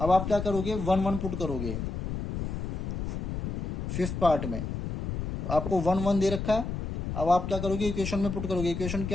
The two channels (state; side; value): noise; left; rumble, 3 dB below the sound